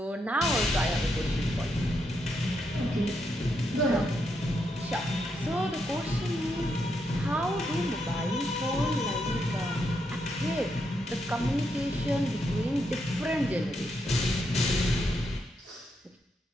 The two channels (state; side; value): normal; both; correlation 0.80